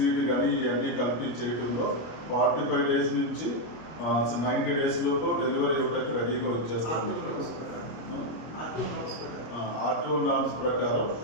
కానీ ఇవన్నీ కలిపి చేయడంలో 45 డేస్ నుంచి 90 డేస్ లోపు డెలివరీ ఇవ్వడానికి రెడీగా వచ్చేస్తాం. ఆర్టీఓ నామ్స్ ప్రకారం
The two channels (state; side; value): late; right; 25 ms